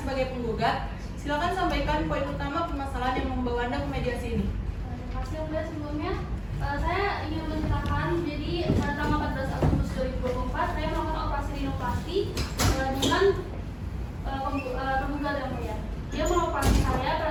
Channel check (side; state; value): both; identical; correlation 1.00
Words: sebagai penggugat, silakan sampaikan poin utama permasalahan yang membawa Anda ke mediasi ini. Terima kasih yang mulia. Sebelumnya saya ingin menceritakan, jadi pada tanggal 14 Agustus 2024 saya melakukan operasi rinoplasti dengan penggugat yang mulia. Dia mengoperasi saya